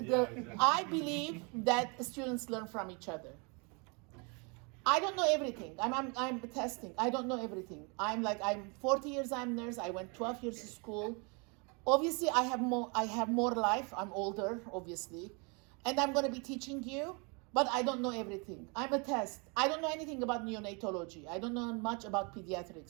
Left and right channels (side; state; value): left; quieter; 32.5 dB